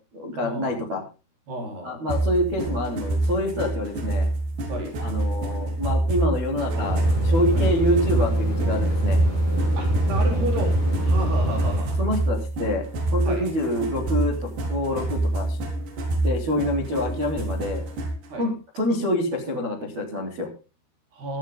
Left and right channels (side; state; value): left; late; 13 ms